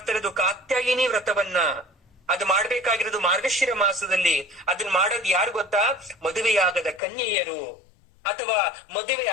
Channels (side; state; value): right; drops out; at 7.0 s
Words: ಇರೋದು ಕಾತ್ಯಾಯಿನಿ ವ್ರತವನ್ನ. ಅದು ಮಾಡ್ಬೇಕಾಗಿರೋದು ಮಾರ್ಗಶಿರ ಮಾಸದಲ್ಲಿ. ಅದನ್ನ ಮಾಡೋದು ಯಾರು ಗೊತ್ತಾ? ಮದುವೆಯಾಗದ ಕನ್ಯೆಯರು, ಅಥವಾ ಮದುವೆ